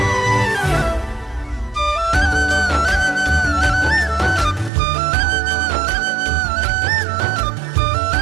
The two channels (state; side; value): drops out; left; at 4.7 s